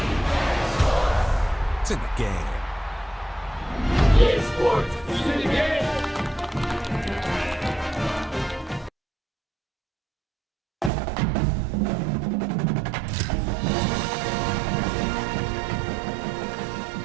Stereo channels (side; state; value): left; drops out; at 10.9 s